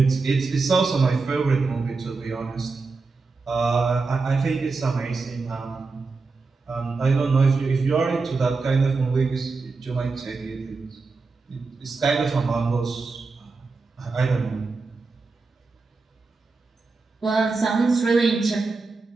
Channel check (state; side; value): quieter; left; 4.1 dB